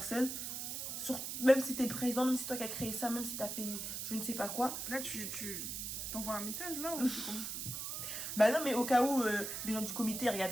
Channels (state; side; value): noise; right; hiss, 4 dB below the sound